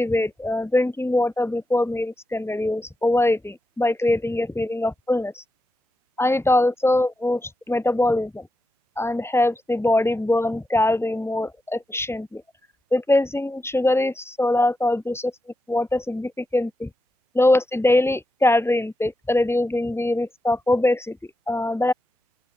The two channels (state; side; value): normal; both; correlation 0.88